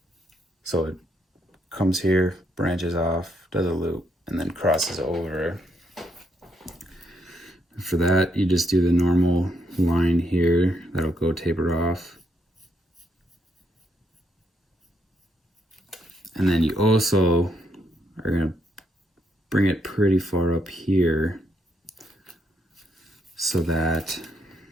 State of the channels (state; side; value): normal; both; correlation 0.76